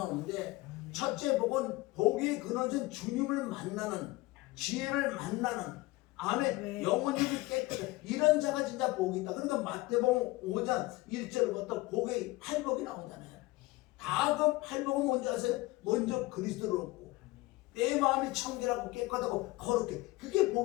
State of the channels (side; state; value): right; quieter; 20.2 dB